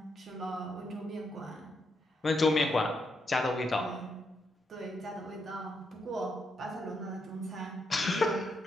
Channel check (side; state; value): both; normal; correlation 0.80